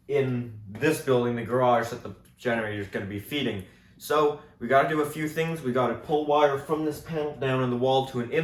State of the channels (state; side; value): identical; both; correlation 1.00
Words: in this building, the garage that the generator is going to be feeding. So we got to do a few things. We got to pull wire from this panel down in the wall to an